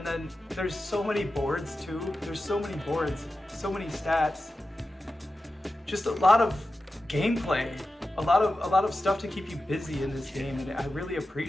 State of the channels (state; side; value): normal; both; correlation 0.92